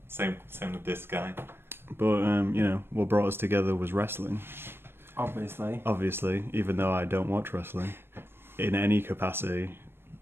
Same with this guy. But what brought us together was wrestling. Obviously, even though I don't watch wrestling in any capacity,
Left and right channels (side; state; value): left; late; 0.11 ms